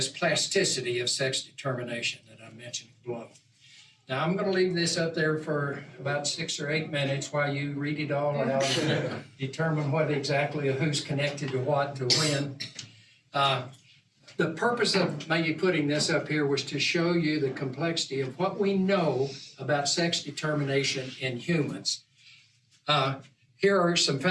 plasticity of sex determination that I mentioned below. Now, I'm going to leave this up there for about 6 or 8 minutes while you read it all out and determine what exactly who's connected to what to when. The purpose of maybe putting this up here was to show you the complexity of what we know about sex determination in humans. Here are some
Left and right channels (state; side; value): identical; both; correlation 1.00